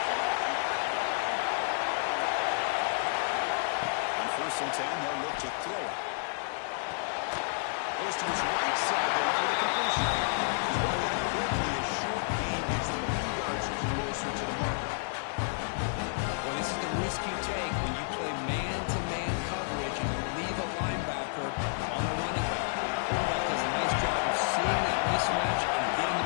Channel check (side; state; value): right; silent; digital silence